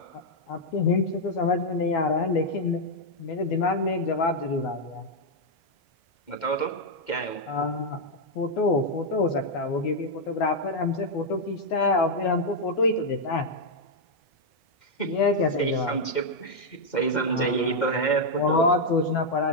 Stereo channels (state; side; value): late; right; 2.1 ms